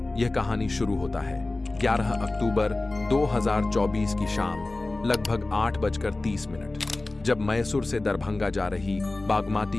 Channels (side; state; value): right; quieter; 3.0 dB